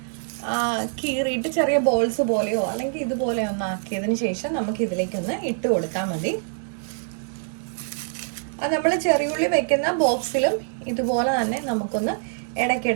കീറിയിട്ട് ചെറിയ ബോൾസ് പോലെയോ അല്ലെങ്കിൽ ഇതുപോലെ ഒന്ന് ആക്കിയതിന് ശേഷം നമുക്ക് ഇതിലേക്കൊന്ന് ഇട്ട് കൊടുത്താൽ മതി. അത് നമ്മൾ ചെറിയുള്ളി വെക്കുന്ന ബോക്സിലും ഇതുപോലെ തന്നെ നമുക്കൊന്ന്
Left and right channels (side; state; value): left; silent; 62 dB below the other